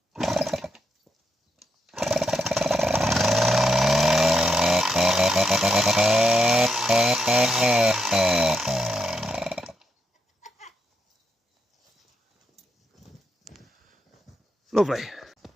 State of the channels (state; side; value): normal; both; correlation 0.81